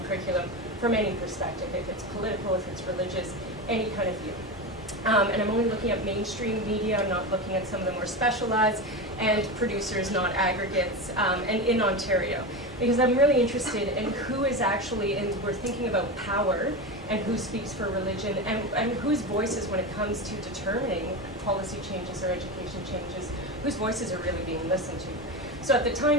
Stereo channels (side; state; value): both; normal; correlation 0.20